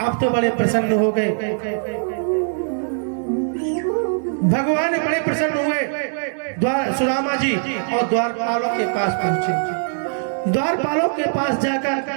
अब तो बड़े प्रसन्न हो गए, भगवान बड़े प्रसन्न हुए। सुदामा जी और द्वारपालों के पास पहुंचे। द्वारपालों के पास जाकर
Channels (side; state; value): left; silent; digital silence